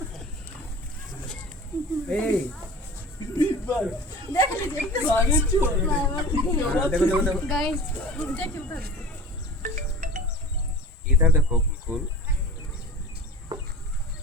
ए देख लीजिए देखो देखो गाइस, देखिए उधर इधर देखो बिल्कुल।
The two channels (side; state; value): both; normal; correlation 0.36